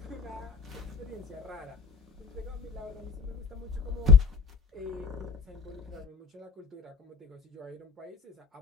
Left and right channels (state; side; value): quieter; right; 5.3 dB